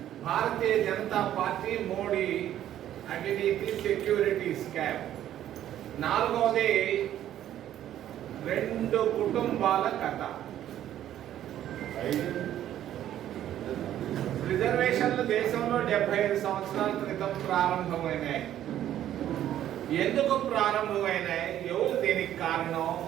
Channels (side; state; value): left; quieter; 11.7 dB